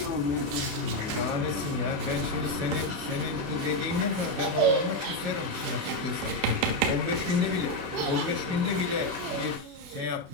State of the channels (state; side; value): late; left; 28 ms